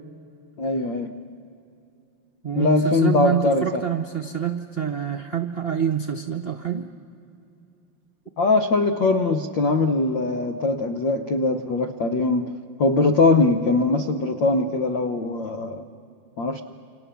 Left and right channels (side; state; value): right; late; 5.7 ms